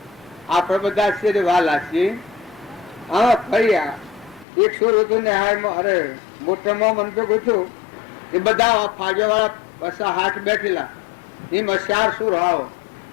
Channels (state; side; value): drops out; right; at 4.5 s